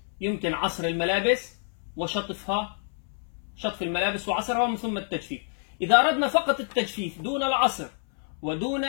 يمكن عصر الملابس وشطفها، شطف الملابس وعصرها ومن ثم التجفيف. إذا أردنا فقط التجفيف دون العصر ودون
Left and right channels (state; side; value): silent; right; 60 dB below the other